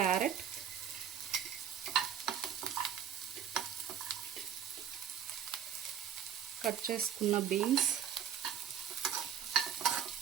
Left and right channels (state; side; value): quieter; left; 9.0 dB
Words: కట్ చేసుకున్న బీన్స్,